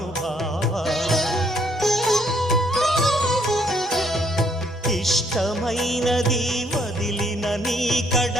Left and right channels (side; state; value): both; normal; correlation 0.68